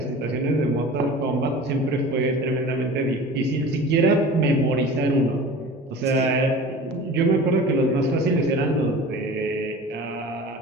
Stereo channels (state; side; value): normal; both; correlation 0.38